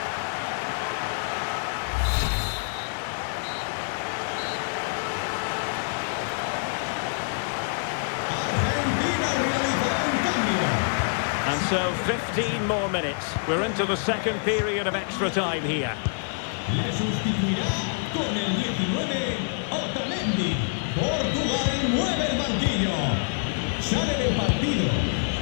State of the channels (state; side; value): silent; right; digital silence